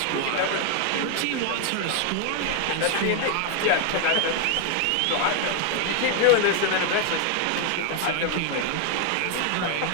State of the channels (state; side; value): different; both; correlation 0.01